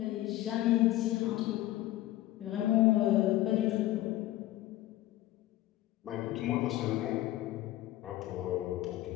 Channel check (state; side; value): quieter; right; 15.6 dB